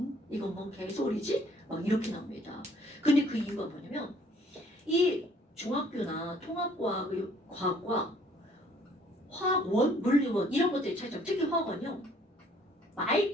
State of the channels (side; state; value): both; normal; correlation 0.60